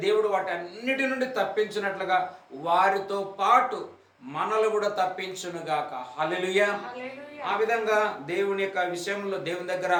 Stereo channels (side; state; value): both; identical; correlation 1.00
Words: దేవుడు వాటి అన్నిటి నుండి తప్పించినట్లుగా వారితో పాటు మనల్ని కూడా తప్పించునుగాక. హల్లెలూయా. ఆ విధంగా దేవుని యొక్క విషయంలో దేవుని దగ్గర